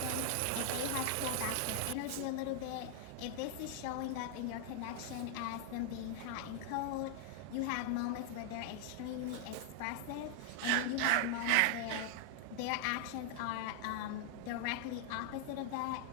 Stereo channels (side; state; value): both; different; correlation 0.00